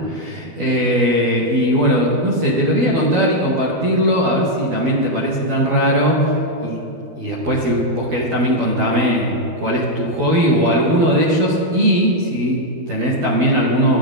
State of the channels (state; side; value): late; left; 12 ms